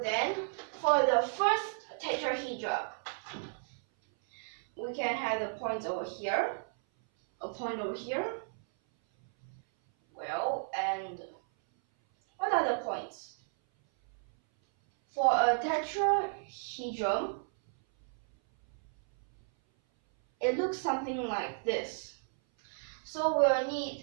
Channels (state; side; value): silent; left; 56 dB below the other